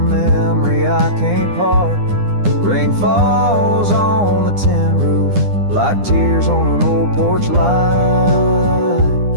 I can't part. Rain falls on the tin roof like tears on an old porch light.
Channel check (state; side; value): late; left; 9.9 ms